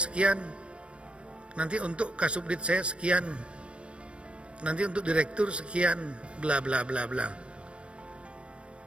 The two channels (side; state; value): left; late; 0.059 ms